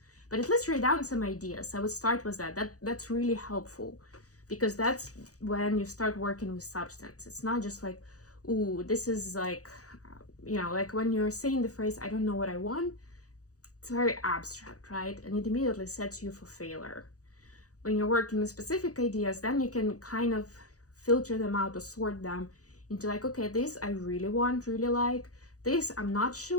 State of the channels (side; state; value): right; late; 0.66 ms